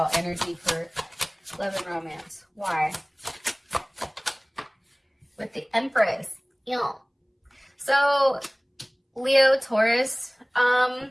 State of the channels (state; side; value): identical; both; correlation 1.00